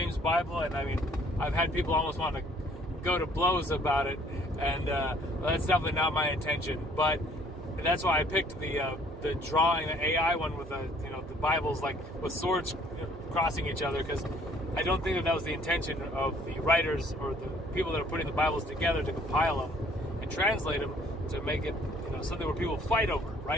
Bible, and I mean, I've had people almost want to go to blows about it, and that's definitely not my intention. But that's why I picked the drawing, the AI one with the Bibles, like with swords crossing each other, because I don't think that was the intention of the writers or the people that are putting the Bibles together to compile them and translate them to make it something where people fight over,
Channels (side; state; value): both; normal; correlation 0.59